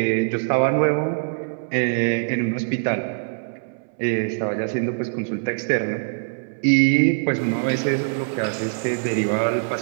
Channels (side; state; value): left; silent; 63 dB below the other